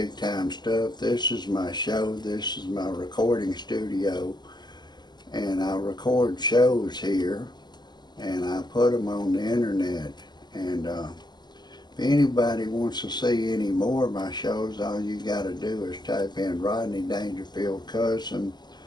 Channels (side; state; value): right; late; 0.21 ms